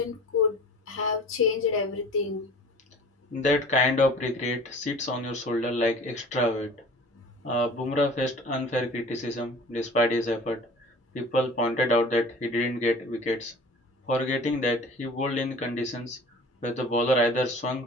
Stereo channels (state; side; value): normal; both; correlation 0.44